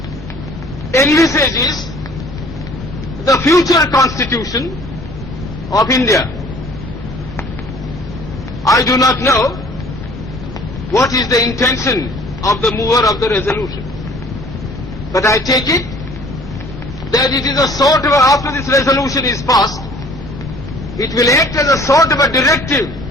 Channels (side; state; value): both; normal; correlation 0.52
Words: envisages the future constitution of India. I do not know what is the intention of the mover of the resolution, but I take it that it is a sort of, after this resolution is passed, it will act as a sort of a directive